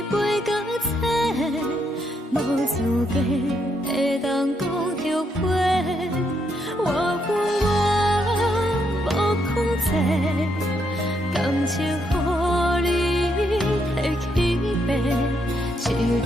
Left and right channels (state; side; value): normal; both; correlation 0.76